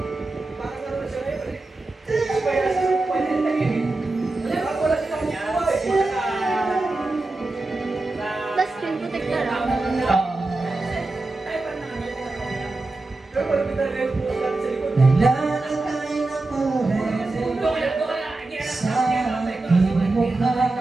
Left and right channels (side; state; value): left; quieter; 3.2 dB